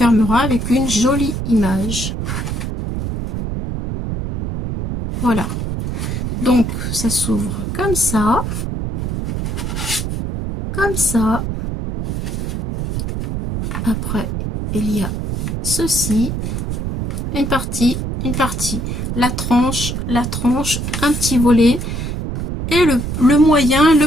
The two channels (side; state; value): right; noise; rumble, 3 dB below the sound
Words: avec une jolie image. Voilà. Donc, ça s'ouvre comme ça. Comme ça. Après, il y a ceci. Une partie, la tranche, un petit volet. Et le moyen,